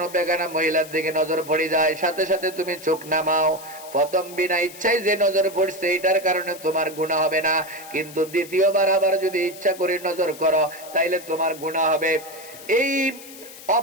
বেগানা মহিলার দিকে নজর পড়ে যায়, সাথে সাথে তুমি চোখ নামাও, প্রথম বিনা ইচ্ছায় যে নজর পড়ছে এটার কারণে তোমার গুনাহ হবে না, কিন্তু দ্বিতীয়বার আবার যদি ইচ্ছা করে নজর করো তাইলে তোমার গুনাহ হবে। এই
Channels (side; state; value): left; noise; hiss, 17 dB below the sound